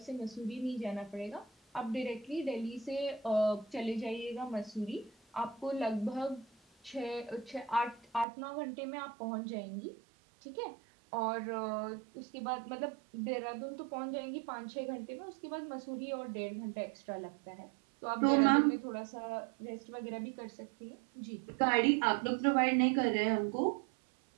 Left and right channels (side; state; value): left; drops out; at 8.2 s